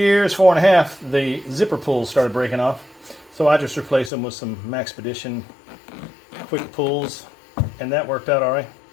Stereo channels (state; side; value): drops out; right; at 4.1 s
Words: 4.5, the zipper pulls started breaking off. So I just replaced them with some Maxpedition quick pulls, and that worked out all right.